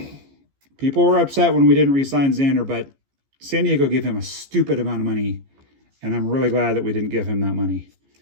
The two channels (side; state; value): left; late; 15 ms